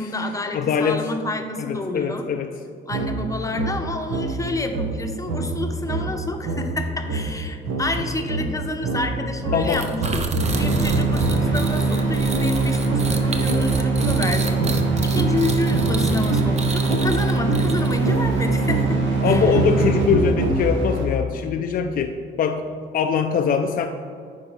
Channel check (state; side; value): normal; both; correlation 0.47